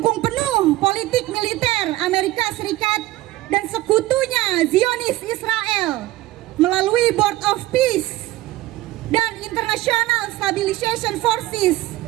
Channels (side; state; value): left; quieter; 16.7 dB